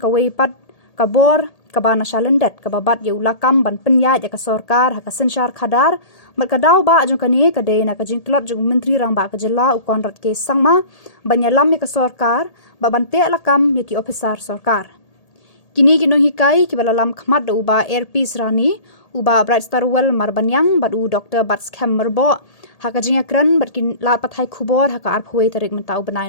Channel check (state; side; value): late; right; 1.8 ms